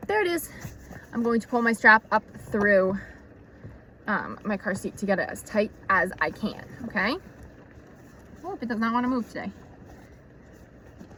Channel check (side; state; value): both; identical; correlation 1.00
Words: there it is. I'm going to pull my strap up through my car seat to get it as tight as I can, okay? Oh, it does not want to move today.